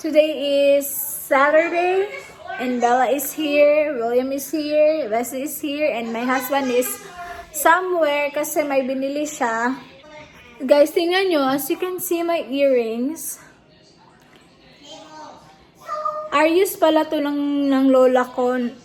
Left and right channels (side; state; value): both; identical; correlation 1.00